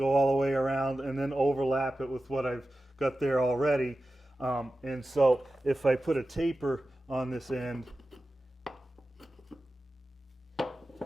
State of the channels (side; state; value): both; normal; correlation 0.94